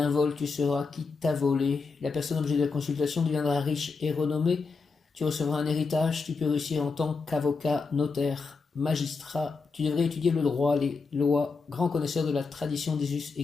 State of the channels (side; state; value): right; quieter; 4.6 dB